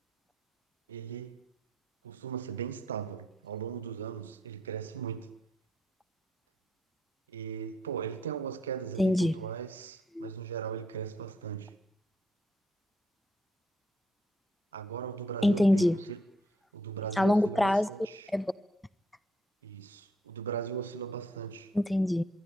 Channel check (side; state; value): both; normal; correlation 0.74